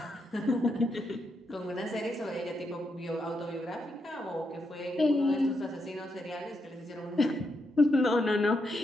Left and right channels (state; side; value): normal; both; correlation 0.82